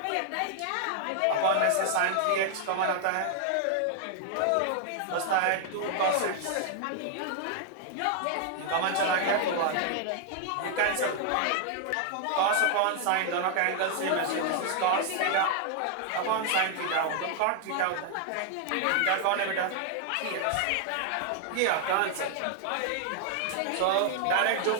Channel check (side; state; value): both; different; correlation 0.00